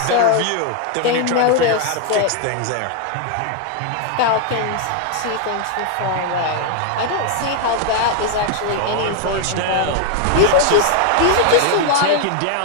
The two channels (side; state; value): both; different; correlation 0.00